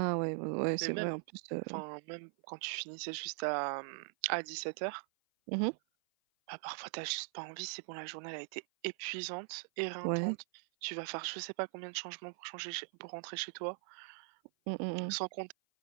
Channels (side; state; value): left; silent; 51 dB below the other